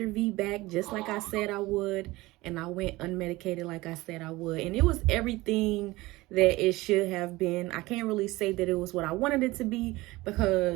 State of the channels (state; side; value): quieter; left; 20.1 dB